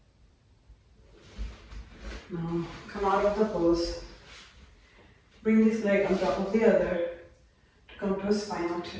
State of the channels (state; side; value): identical; both; correlation 1.00